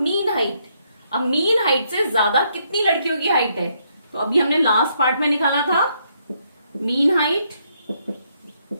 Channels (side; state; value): both; inverted; correlation -0.73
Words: height? अब मीन हाइट से ज्यादा कितनी लड़कियों की हाइट है? तो अभी हमने लास्ट पार्ट में निकाला था मीन हाइट